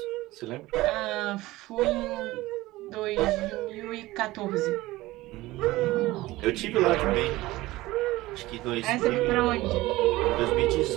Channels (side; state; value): left; quieter; 18.4 dB